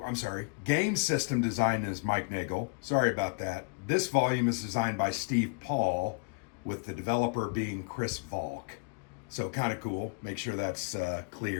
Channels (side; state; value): right; quieter; 35.5 dB